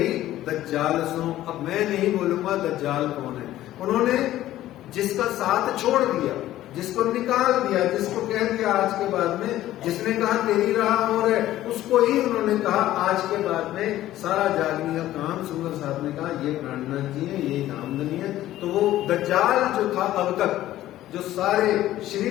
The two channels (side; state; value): right; quieter; 14.1 dB